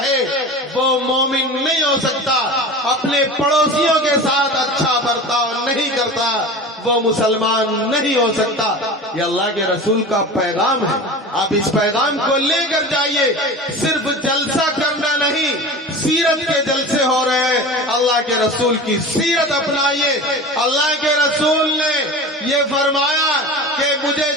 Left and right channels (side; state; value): both; normal; correlation 0.33